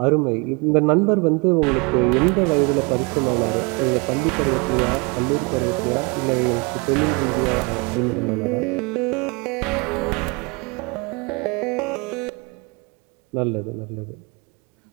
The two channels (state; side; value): quieter; left; 29.8 dB